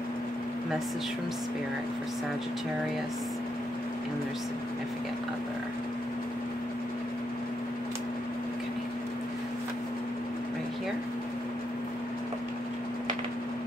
Message from Spirit for Sagittarius and their significant other. Okay. Right here.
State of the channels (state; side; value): normal; both; correlation 0.80